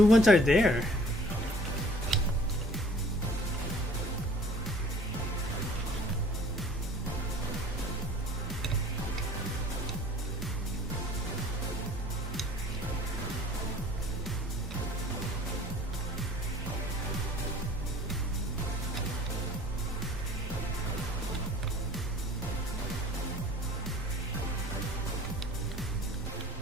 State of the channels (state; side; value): normal; both; correlation 0.51